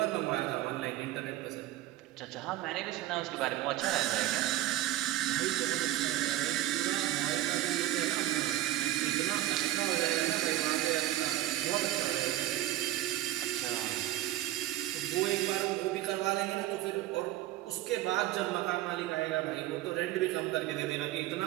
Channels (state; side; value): quieter; left; 14.6 dB